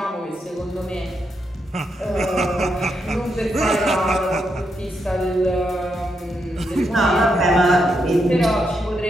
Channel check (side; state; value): both; normal; correlation 0.81